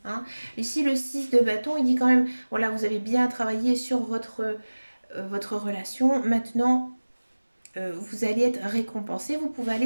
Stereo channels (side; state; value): both; inverted; correlation -1.00